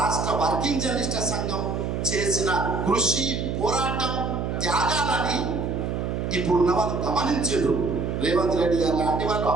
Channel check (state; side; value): noise; right; hum, 2 dB below the sound